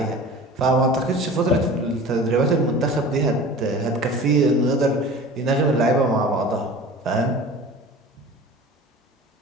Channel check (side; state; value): both; normal; correlation 0.39